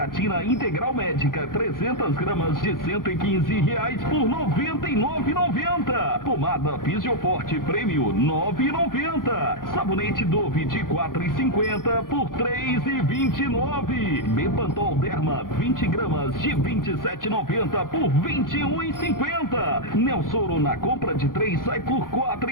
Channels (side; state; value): right; late; 0.91 ms